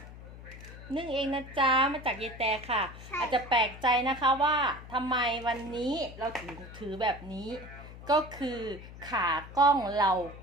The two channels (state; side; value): noise; left; hum, 15 dB below the sound